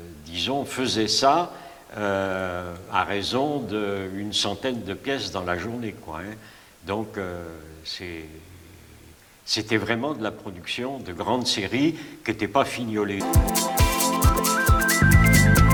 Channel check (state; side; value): identical; both; correlation 1.00